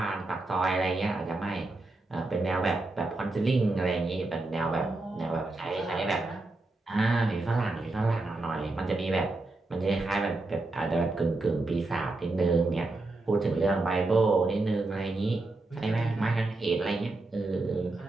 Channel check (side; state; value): left; quieter; 3.0 dB